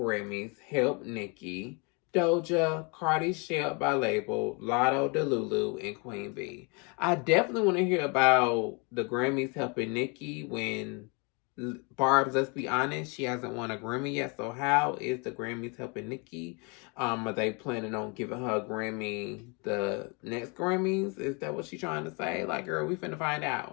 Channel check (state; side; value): quieter; right; 32.2 dB